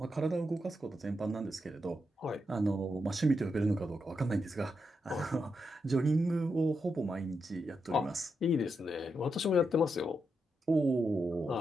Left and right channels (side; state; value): both; normal; correlation 0.84